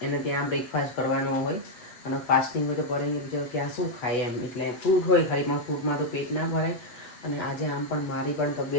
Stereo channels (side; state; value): right; late; 8.1 ms